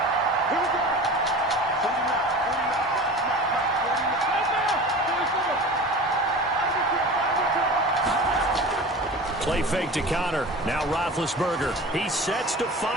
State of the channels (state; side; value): normal; both; correlation 0.36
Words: Play fake to Connor. Now Roethlisberger. He sets to